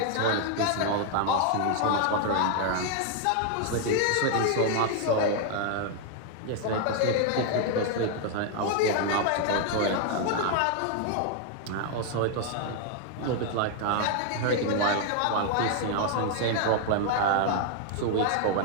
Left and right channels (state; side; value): different; both; correlation 0.00